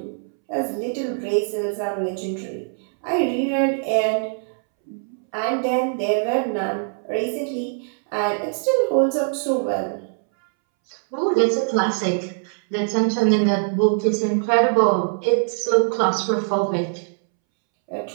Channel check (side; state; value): left; silent; 64 dB below the other